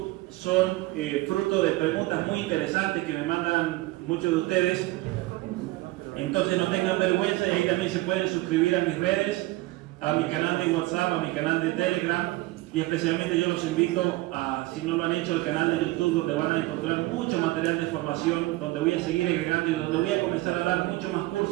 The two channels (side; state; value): left; quieter; 19.7 dB